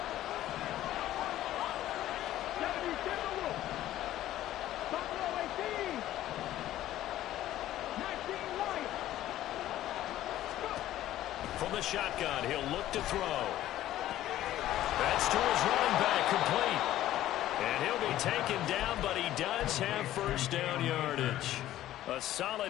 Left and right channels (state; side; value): quieter; right; 13.7 dB